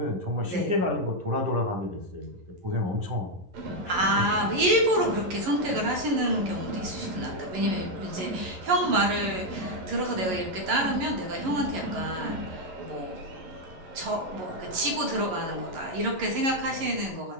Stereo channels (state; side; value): late; left; 11 ms